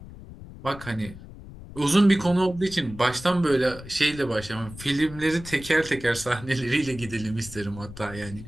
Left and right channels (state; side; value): noise; left; rumble, 15 dB below the sound